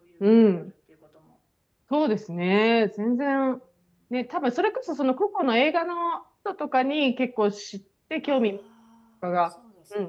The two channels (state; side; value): identical; both; correlation 1.00